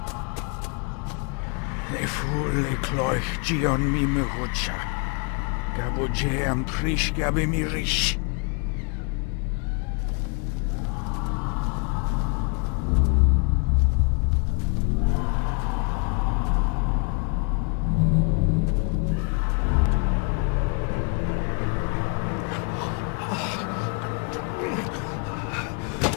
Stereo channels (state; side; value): quieter; right; 35.7 dB